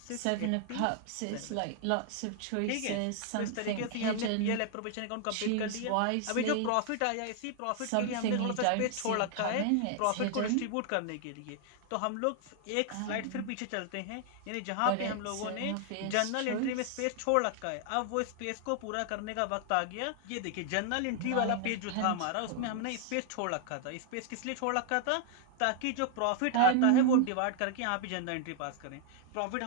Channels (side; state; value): both; different; correlation 0.00